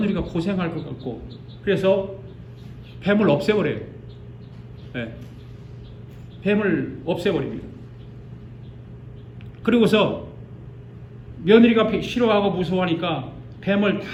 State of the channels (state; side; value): identical; both; correlation 1.00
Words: 고생할 것 같고, 그래서 뱀을 없애버려요. 네. 뱀을 없애버립니다. 그리고서 며느리가 싫어하고 무서워하니까 뱀을